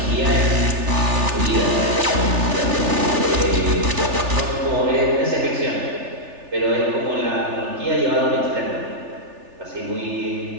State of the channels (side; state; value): left; late; 3.4 ms